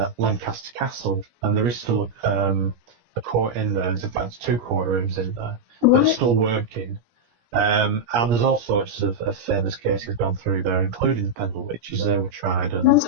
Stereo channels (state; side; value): late; left; 17 ms